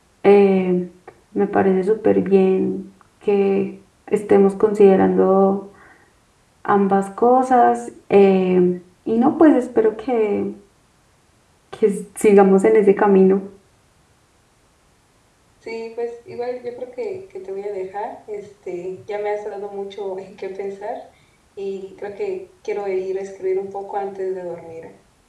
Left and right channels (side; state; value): both; identical; correlation 1.00